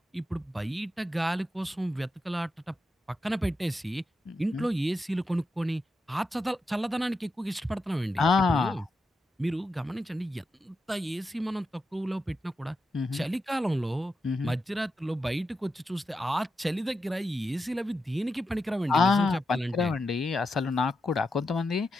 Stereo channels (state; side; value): normal; both; correlation 0.87